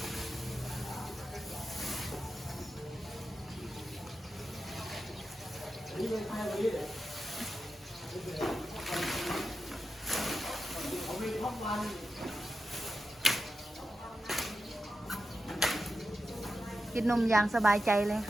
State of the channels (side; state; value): both; normal; correlation 0.90